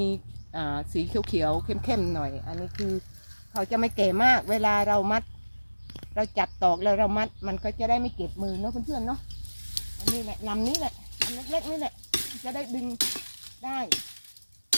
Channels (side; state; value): both; inverted; correlation -1.00